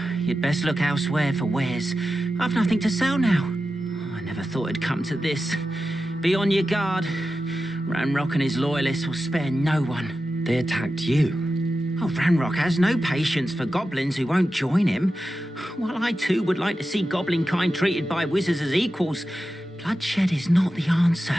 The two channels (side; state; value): both; normal; correlation 0.92